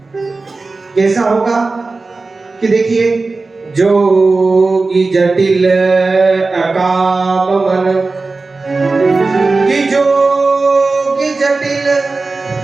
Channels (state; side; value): quieter; left; 3.7 dB